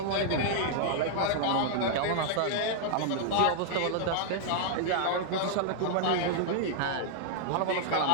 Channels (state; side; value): different; both; correlation -0.01